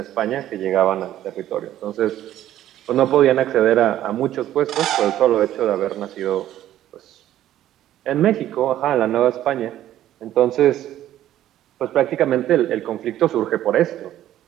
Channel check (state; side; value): quieter; left; 12.6 dB